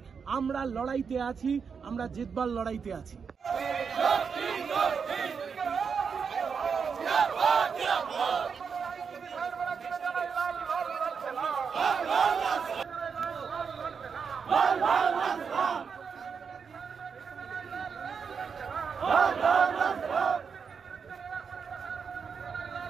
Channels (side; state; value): left; quieter; 6.1 dB